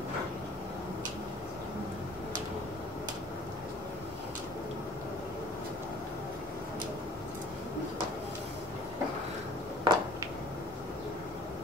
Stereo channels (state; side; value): normal; both; correlation 0.49